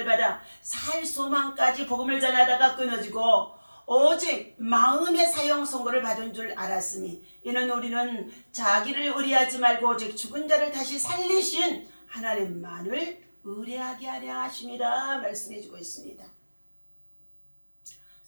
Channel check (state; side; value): inverted; both; correlation -1.00